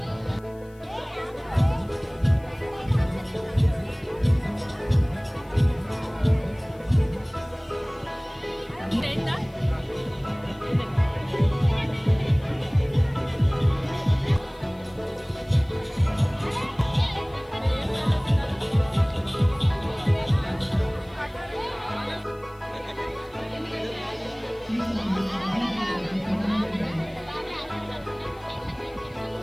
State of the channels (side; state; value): left; noise; hiss, 30 dB below the sound